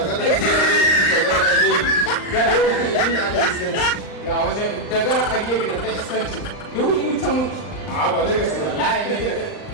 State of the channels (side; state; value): right; late; 38 ms